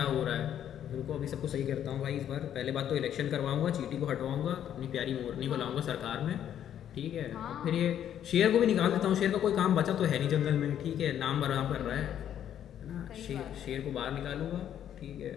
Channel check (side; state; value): right; quieter; 10.2 dB